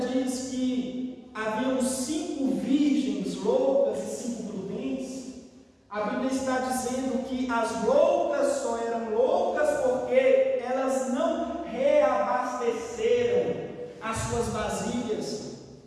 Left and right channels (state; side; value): identical; both; correlation 1.00